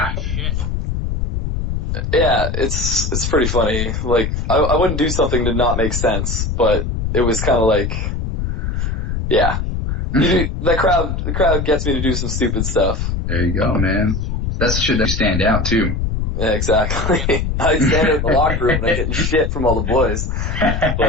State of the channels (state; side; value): noise; left; rumble, 1 dB below the sound